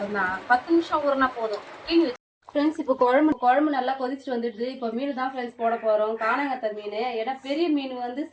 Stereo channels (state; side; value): identical; both; correlation 1.00